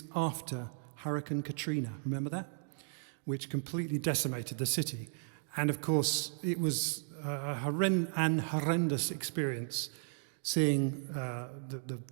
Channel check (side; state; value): left; silent; digital silence